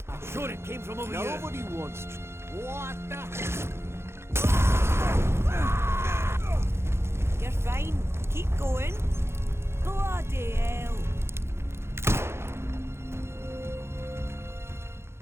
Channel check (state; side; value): late; left; 0.12 ms